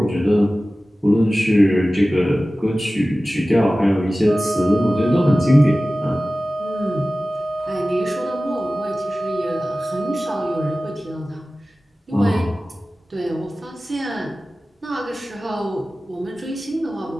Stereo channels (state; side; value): normal; both; correlation 0.96